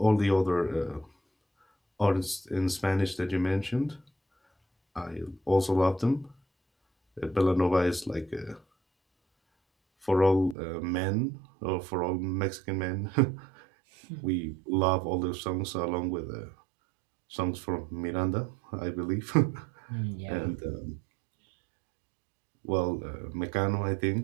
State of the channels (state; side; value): drops out; left; at 10.6 s